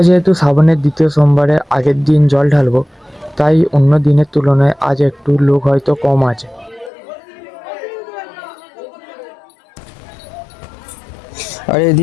যেহেতু শ্রাবণের দ্বিতীয় সোমবারে আগের দিন জল ঢালবো, তাই অন্য দিনের তুলনায় আজ একটু লোক হয়তো কম আছে। আর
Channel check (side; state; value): right; drops out; at 6.9 s